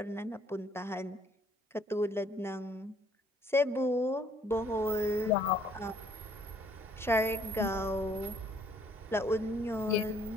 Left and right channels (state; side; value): normal; both; correlation 0.63